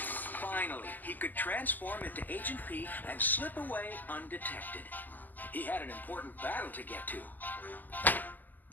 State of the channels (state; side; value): late; right; 0.085 ms